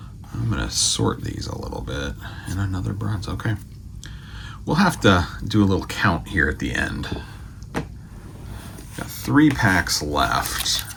I'm going to sort these a little bit. And another bronze. Okay. We'll have to do a little count here at the end. Got 3 packs left.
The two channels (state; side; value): identical; both; correlation 1.00